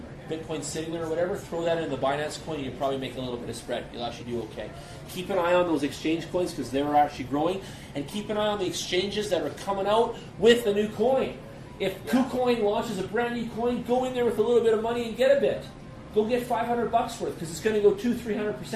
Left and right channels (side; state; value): both; identical; correlation 1.00